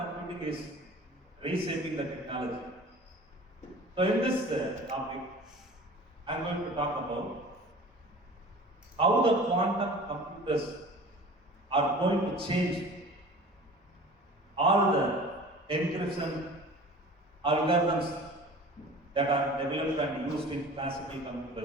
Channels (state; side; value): normal; both; correlation 0.41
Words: is reshaping the technology. So in this topic, I am going to talk about how the quantum computers are going to change all the encryption algorithms that are developed and used in classical